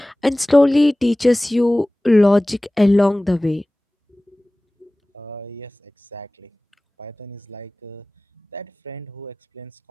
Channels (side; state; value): both; normal; correlation 0.98